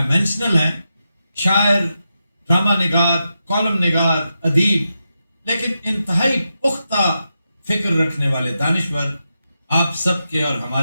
है, शायर, ड्रामा निगार, कॉलम निगार, अदीब, लेकिन इंतहाई पुख्ता फिक्र रखने वाले दानिश्वर, आप सबके और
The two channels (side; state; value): both; inverted; correlation -0.88